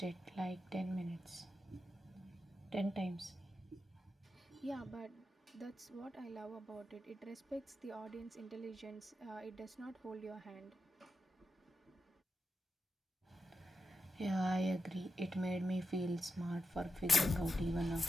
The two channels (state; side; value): normal; both; correlation 0.89